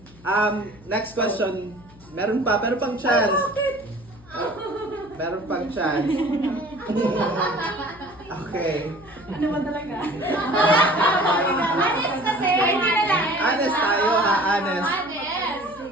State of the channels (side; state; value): left; noise; hum, 24 dB below the sound